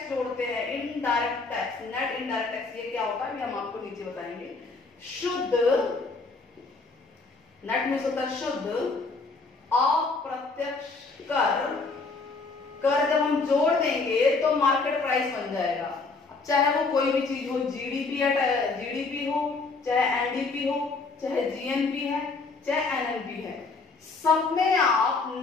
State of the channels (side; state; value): right; quieter; 4.0 dB